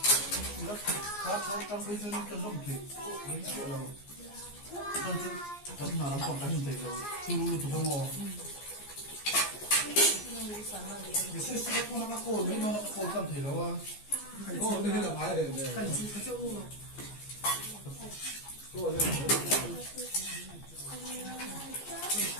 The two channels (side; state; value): right; late; 14 ms